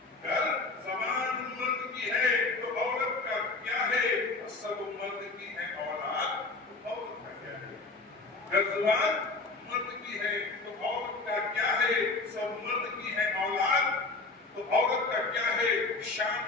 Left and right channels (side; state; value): right; quieter; 3.7 dB